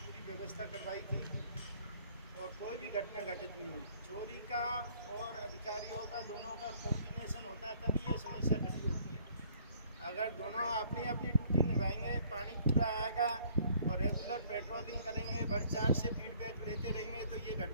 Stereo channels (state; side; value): inverted; both; correlation -0.59